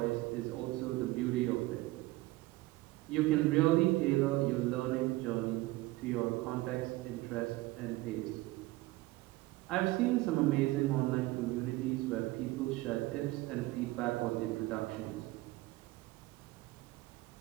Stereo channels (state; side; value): quieter; left; 19.4 dB